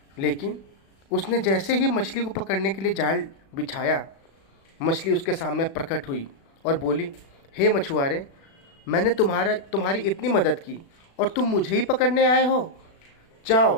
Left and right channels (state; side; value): late; right; 36 ms